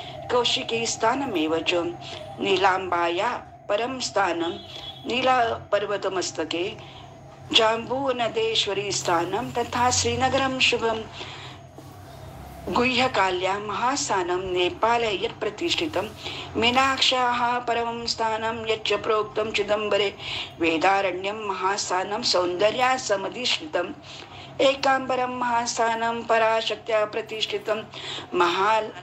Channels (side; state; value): both; identical; correlation 1.00